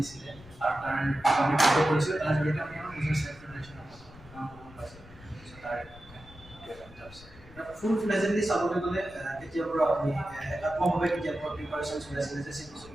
আৰু তাৰ আমি ফটো কৰিছোঁ তাৰ জৰিয়তে আমি আমাৰ নিজৰ সেল্ফ প্ৰিপাৰেশ্যন পাইছোঁ তাৰ ফুল ফ্লেজেন্টলি চাবলৈ গ'লে কেতিয়াৰ পৰা আপুনি একাত্মকভাৱে কেতিয়াৰ পৰা প্ৰিপাৰেশ্যন চলাইছিলে যে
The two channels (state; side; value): noise; left; rumble, 21 dB below the sound